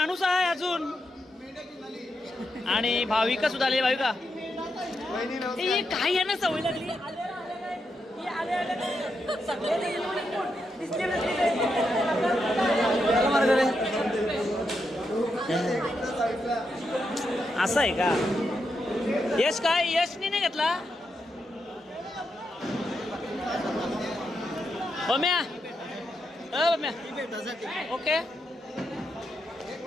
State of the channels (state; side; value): normal; both; correlation 0.84